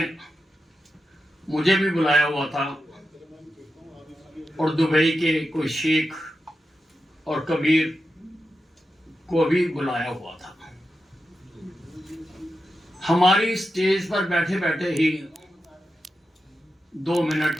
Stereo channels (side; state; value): both; normal; correlation 0.89